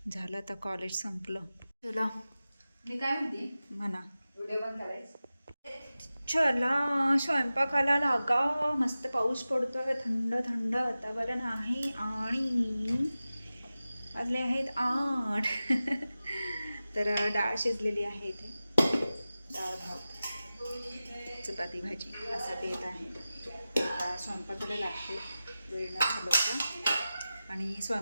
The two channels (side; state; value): both; inverted; correlation -0.95